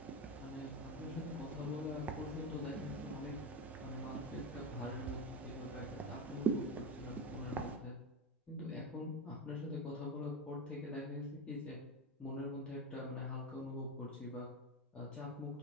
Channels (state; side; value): normal; both; correlation 0.18